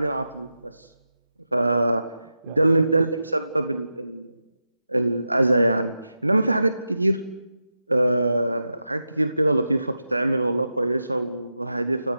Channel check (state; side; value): inverted; both; correlation -0.90